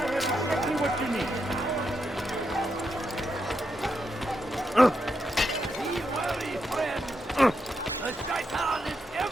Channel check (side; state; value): both; normal; correlation 0.83